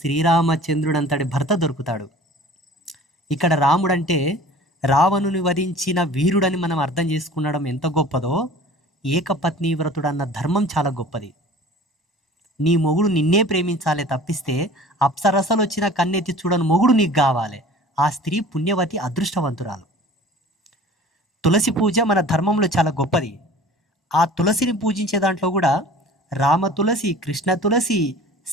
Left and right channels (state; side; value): normal; both; correlation 0.44